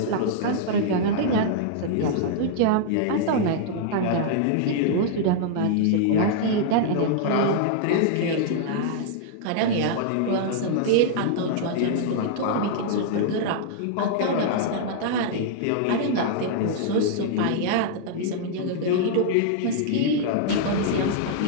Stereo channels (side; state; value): both; different; correlation -0.01